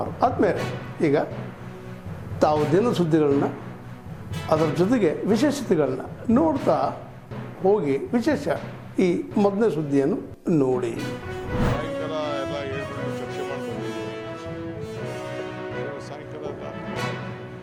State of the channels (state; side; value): identical; both; correlation 1.00